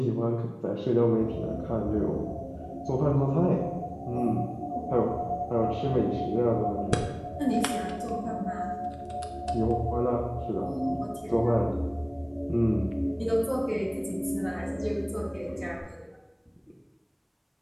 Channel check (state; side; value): identical; both; correlation 1.00